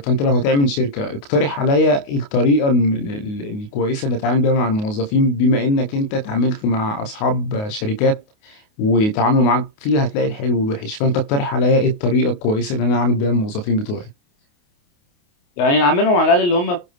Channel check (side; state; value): right; late; 28 ms